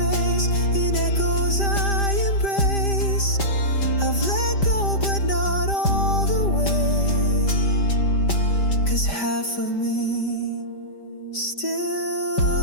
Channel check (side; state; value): right; late; 5.1 ms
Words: in echoes I embrace. I've let go but not all the way, 'cause half of me